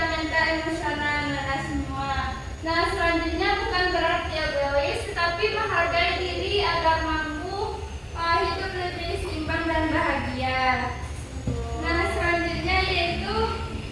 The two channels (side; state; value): both; identical; correlation 1.00